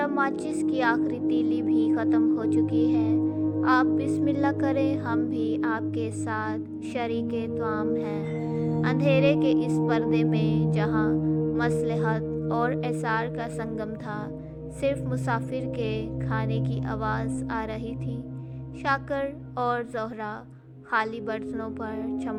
ماچس کی آخری تیلی بھی ختم ہو چکی ہے۔ آپ بسم اللہ کریں، ہم بھی آپ کے ساتھ شریک طعام ہیں۔ اندھیرے کے اس پردے میں جہاں مصلحت اور اثار کا سنگم تھا، صرف مسافر کے کھانے کی آواز آ رہی تھی۔ شاکر اور زہرا خالی برتنوں پر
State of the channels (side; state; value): both; identical; correlation 1.00